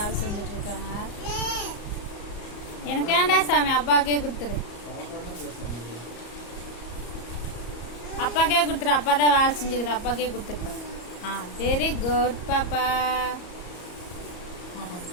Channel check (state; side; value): late; right; 34 ms